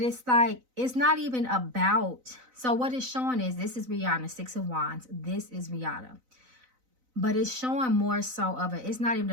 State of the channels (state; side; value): late; left; 4.0 ms